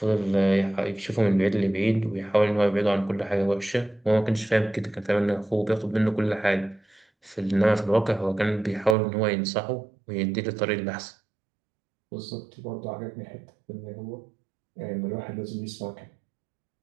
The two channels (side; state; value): left; drops out; at 9.0 s